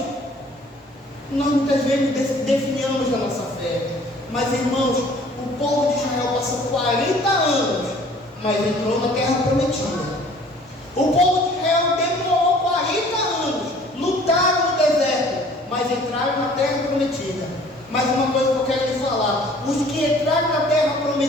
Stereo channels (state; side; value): normal; both; correlation 0.53